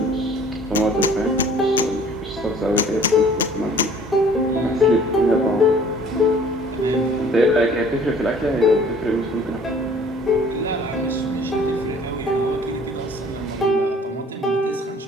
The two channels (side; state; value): both; normal; correlation 0.53